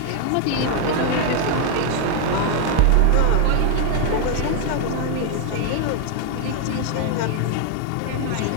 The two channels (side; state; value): both; different; correlation 0.00